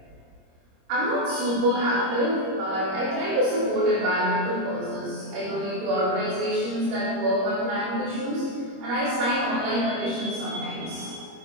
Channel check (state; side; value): late; left; 25 ms